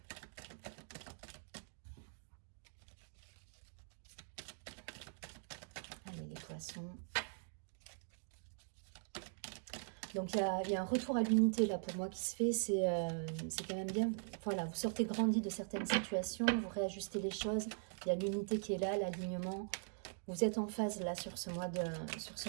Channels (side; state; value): left; silent; digital silence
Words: Allez, les poissons. Donc, il y a un retour à l'unité là pour moi qui se fait. C'est quand même bien. Voilà, vous sortez grandi de certaines situations, vous réajustez les choses. Il y a l'unité qui est là, l'alignement. Vous êtes en phase là sur ce mois de